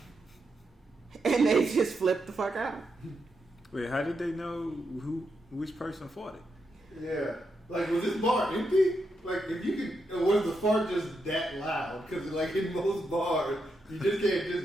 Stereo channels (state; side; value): normal; both; correlation 0.83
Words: and they just flipped the fuck out. Wait, how did they know which person fought it? Yeah. Like, was this bar empty? Like, if you could, or was the fart just that loud? Because, like, in most bars, you just can't